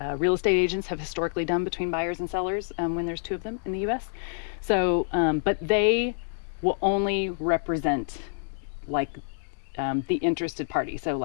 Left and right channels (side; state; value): right; silent; digital silence